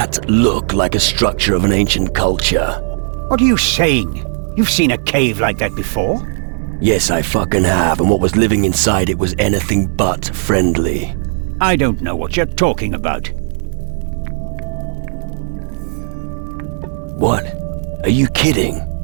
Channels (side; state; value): left; silent; 65 dB below the other